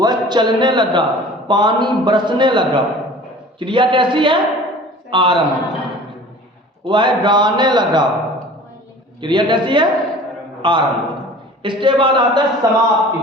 चलने लगा, पानी बरसने लगा। क्रिया कैसी है? आरंभ। वह गाने लगा। क्रिया कैसी है? आरंभ। इसके बाद आता है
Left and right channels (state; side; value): normal; both; correlation 0.44